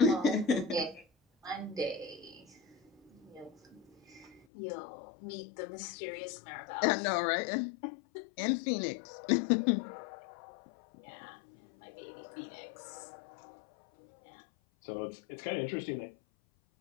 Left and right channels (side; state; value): right; drops out; at 4.5 s